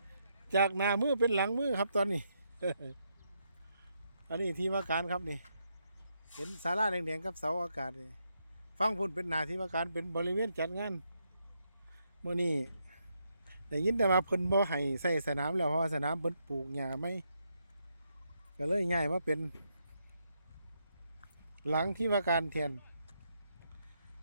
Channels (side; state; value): both; inverted; correlation -0.79